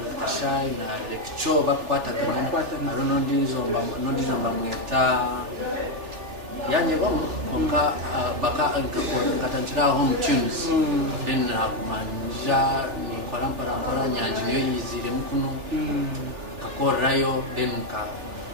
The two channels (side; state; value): left; late; 3.4 ms